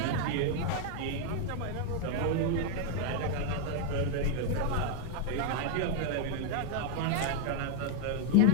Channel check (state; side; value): different; both; correlation 0.00